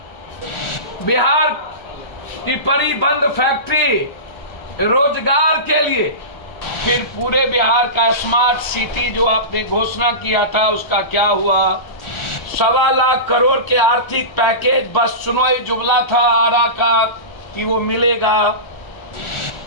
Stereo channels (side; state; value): right; late; 1.4 ms